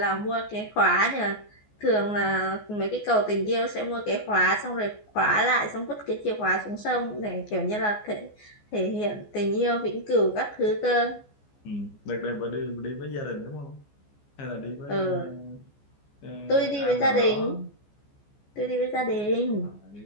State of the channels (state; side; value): late; right; 14 ms